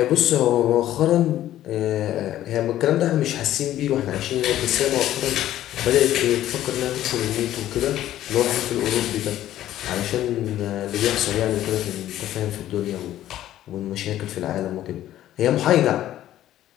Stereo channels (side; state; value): right; quieter; 13.0 dB